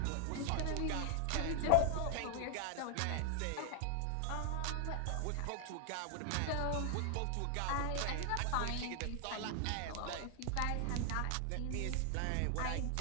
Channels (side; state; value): both; different; correlation 0.00